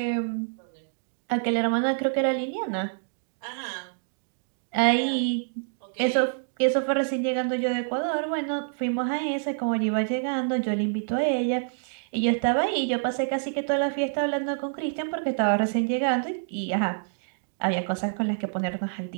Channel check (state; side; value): silent; left; digital silence